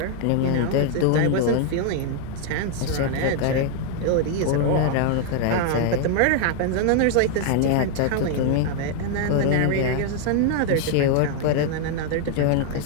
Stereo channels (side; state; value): both; different; correlation 0.00